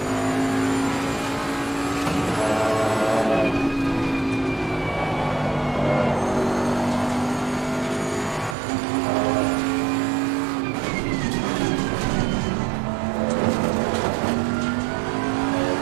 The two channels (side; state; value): left; drops out; at 8.6 s